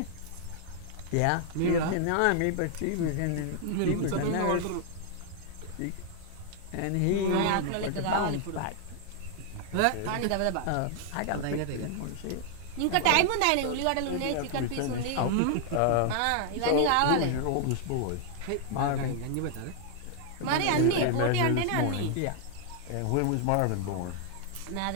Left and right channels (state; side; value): different; both; correlation 0.00